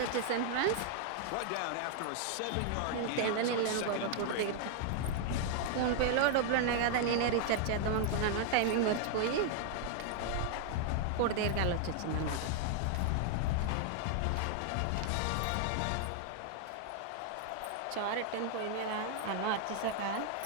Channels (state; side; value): different; both; correlation 0.00